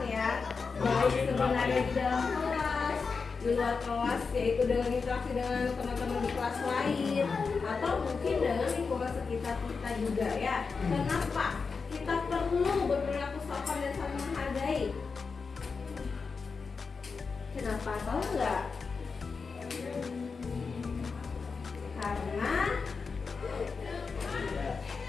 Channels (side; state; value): right; quieter; 4.9 dB